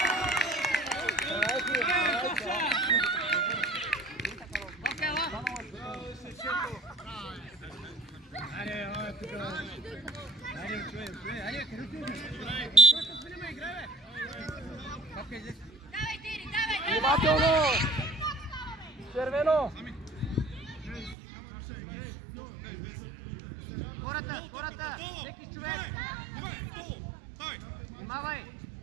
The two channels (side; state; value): left; drops out; at 21.2 s